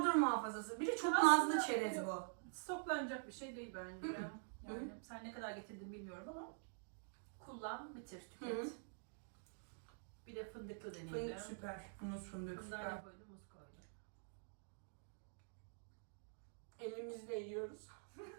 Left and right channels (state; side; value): silent; left; digital silence